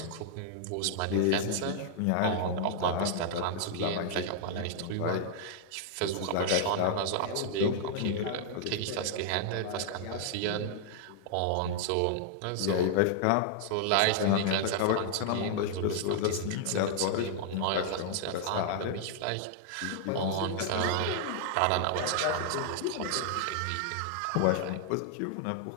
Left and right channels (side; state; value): both; different; correlation -0.01